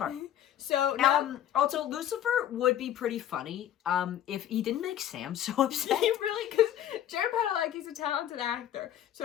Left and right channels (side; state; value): right; quieter; 11.1 dB